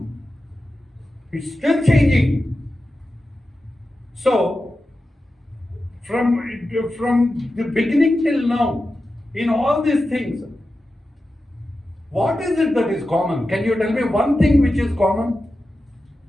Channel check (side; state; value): both; normal; correlation 0.92